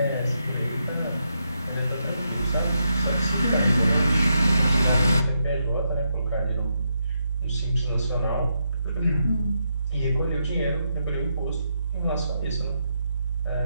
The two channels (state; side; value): inverted; both; correlation -0.81